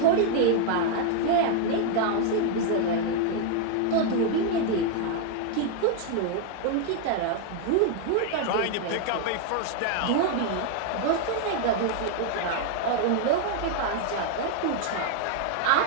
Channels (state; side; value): different; both; correlation 0.00